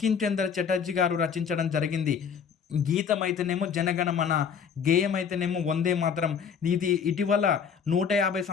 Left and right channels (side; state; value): right; quieter; 6.9 dB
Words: చంద్ర చటర్జీ గారు రచించడం జరిగింది. గీతం అయితేనేమో జనగణమన, గేయం అయితేనేమో వందే మాతరం. ఇది ఇటీవల 150